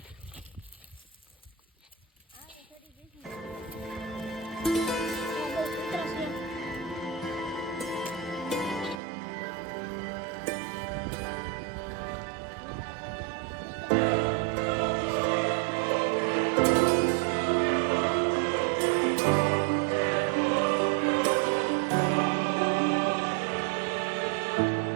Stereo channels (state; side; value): drops out; left; at 9.0 s